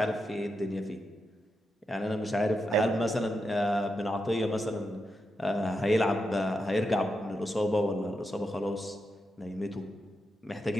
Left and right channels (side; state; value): both; normal; correlation 0.86